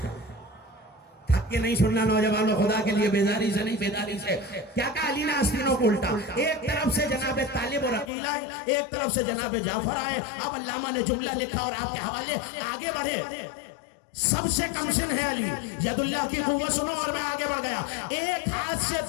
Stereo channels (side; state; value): right; drops out; at 8.1 s